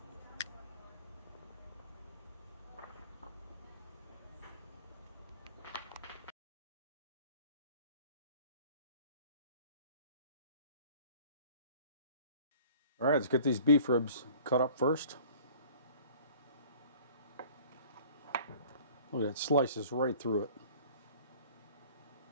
All right, let's get these beef ribs cut up first. Look at that, slices right through it.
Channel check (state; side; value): inverted; both; correlation -0.49